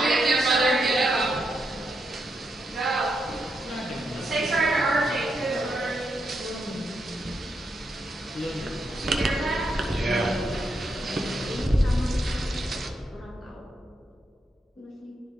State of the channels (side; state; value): both; normal; correlation 0.82